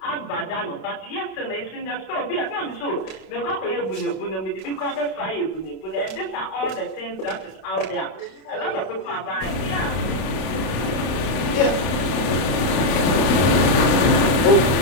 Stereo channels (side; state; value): right; late; 32 ms